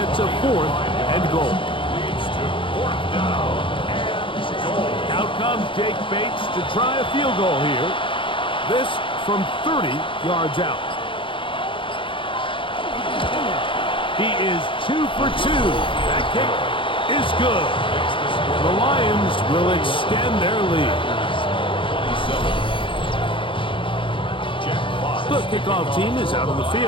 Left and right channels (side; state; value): right; late; 0.25 ms